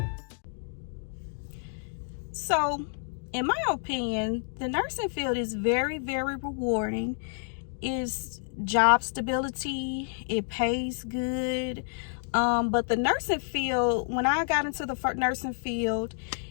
So, in my opinion, the nursing field is very, very rewarding. It's job stability, it pays good. But the nursing field, when I got into the nursing field,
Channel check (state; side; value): silent; right; digital silence